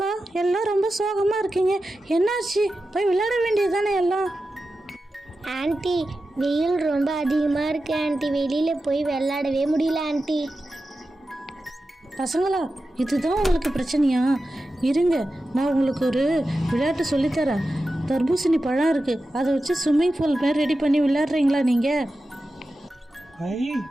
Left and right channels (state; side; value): normal; both; correlation 0.92